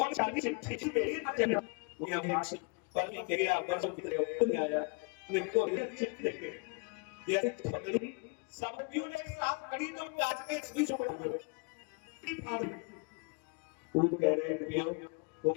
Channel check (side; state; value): right; quieter; 32.2 dB